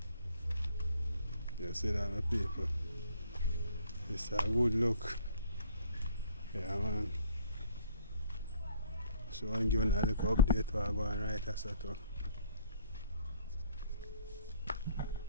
You see that, my people? It's a good look. Yeah man. So I'm giving a little update while I go and write a set up.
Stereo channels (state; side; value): inverted; both; correlation -0.59